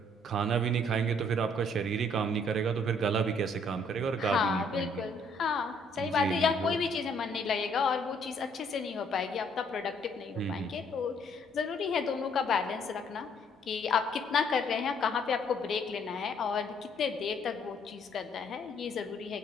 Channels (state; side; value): normal; both; correlation 0.65